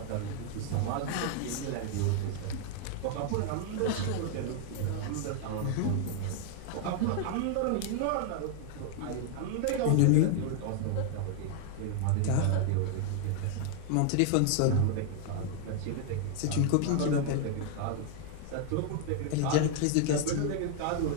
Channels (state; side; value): different; both; correlation 0.00